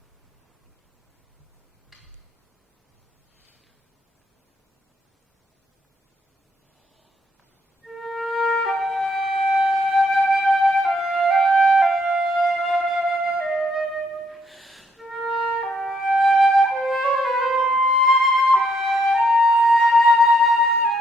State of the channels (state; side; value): normal; both; correlation 0.72